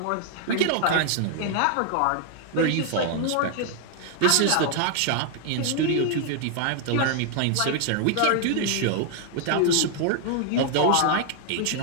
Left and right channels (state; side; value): different; both; correlation 0.00